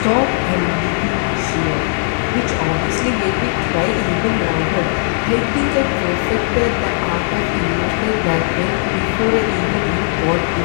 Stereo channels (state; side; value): silent; right; digital silence